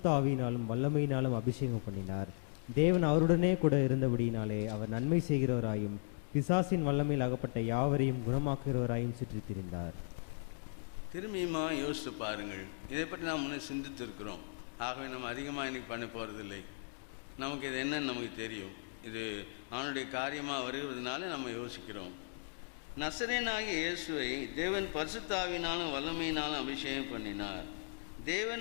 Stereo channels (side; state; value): right; silent; digital silence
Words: ஆவியினாலும் வல்லமையினாலும் அபிஷேகம் பண்ணினார். தேவன் அவருடனே கூட இருந்தபடியினாலே அவர் நன்மை செய்கிறவராயும் பிசாசின் வல்லமையில் அகப்பட்ட யாவரையும் குணமாக்குகிறவராயும் சுற்றி திரிந்தார். திரும்பியுமா யோசித்து பாருங்கள். இதை பற்றி நாம் முன்னே சிந்தித்திருக்கிறோம். ஆகவே நம்ம அதிகமாக இன்னைக்கு பண்ண போகிறதில்லை. நமக்கு இது என்னன்னு நமக்கு தெரியும். இது அவனுடைய காரியமாக வருகிறதுனால நம்ம யோசிக்கிறோம். நசரேயனாகிய இயேசுவை தேவன் பரிசுத்த ஆவியினாலும் வல்லமையினாலும் அபிஷேகம் பண்ணினார்.